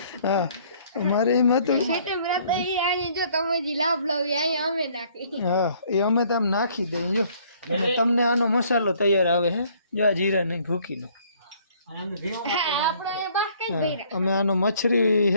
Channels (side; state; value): both; inverted; correlation -0.61